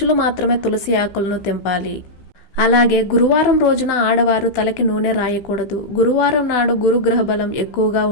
మాత్రమే తులసి ఆకులను తెంపాలి. అలాగే గురువారం రోజున ఆడవారు తలకి నూనె రాయకూడదు. గురువారం నాడు గురుగ్రహ బలం ఎక్కువగా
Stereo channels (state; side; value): late; right; 15 ms